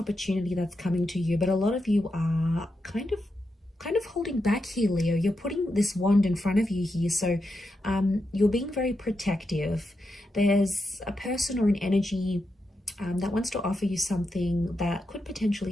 that's coming to you, but a lot of you are kind of holding back here, Leo. You're putting this wand in front of you here, so you're being very protective. There's a person or an energy that wants to offer you something that could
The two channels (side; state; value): both; normal; correlation 0.86